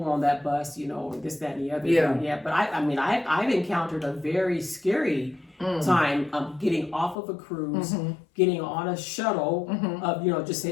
on that bus, you know, this, that, and the other. Yeah. But I've encountered a very scary time of getting off of a cruise, getting on a shuttle, of just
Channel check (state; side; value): drops out; right; at 7.2 s